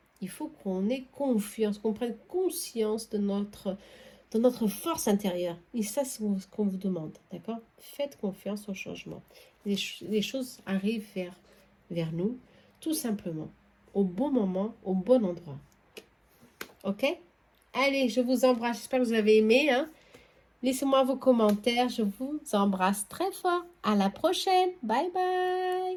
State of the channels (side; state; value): both; identical; correlation 1.00